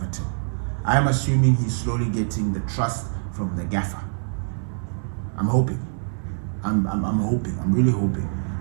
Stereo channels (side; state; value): left; silent; 62 dB below the other